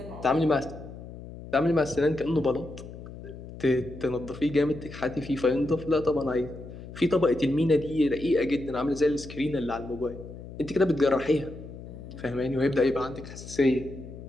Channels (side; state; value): left; noise; hum, 13 dB below the sound